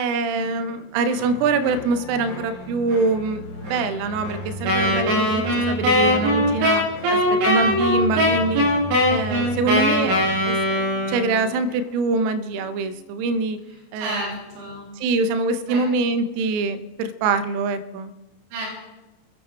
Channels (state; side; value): late; left; 33 ms